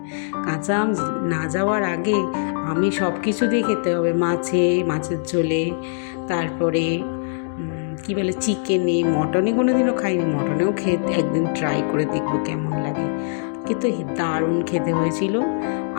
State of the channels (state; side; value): silent; right; digital silence